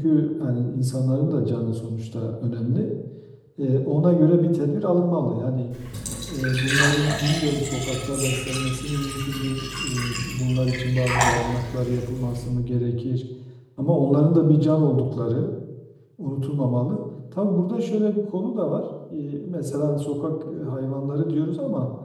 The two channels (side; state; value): both; identical; correlation 1.00